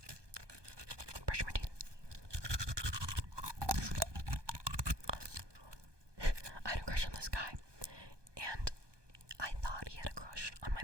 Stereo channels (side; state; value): left; late; 1.2 ms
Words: brush my teeth. I had a crush on this guy, and I thought he had a crush on my